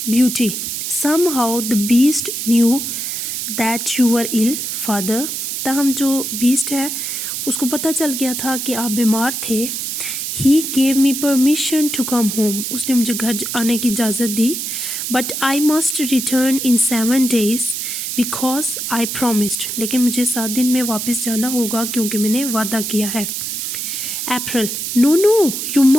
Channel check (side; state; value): right; noise; hiss, 4 dB below the sound